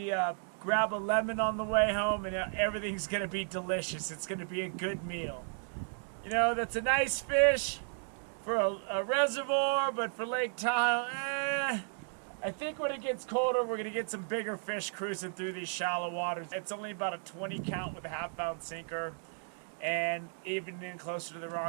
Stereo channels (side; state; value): left; silent; 55 dB below the other